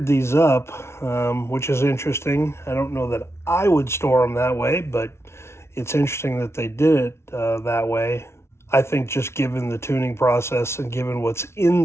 these up, which is interesting. I don't know that I would store them that way, but it's interesting that they did it that way. I think just given the tuning process and given what's in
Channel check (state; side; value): late; right; 0.13 ms